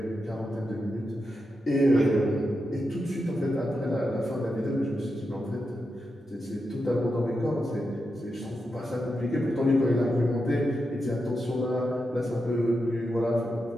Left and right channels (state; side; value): normal; both; correlation 0.87